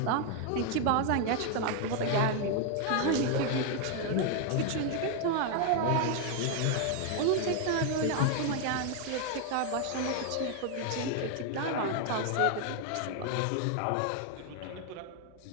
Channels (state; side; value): different; both; correlation 0.00